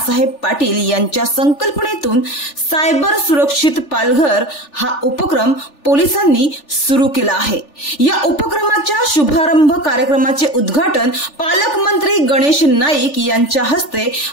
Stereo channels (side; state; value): right; late; 3.4 ms